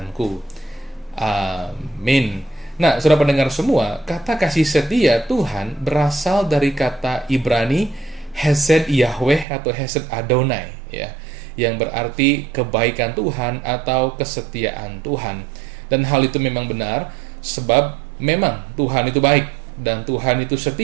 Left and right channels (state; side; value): drops out; left; at 9.5 s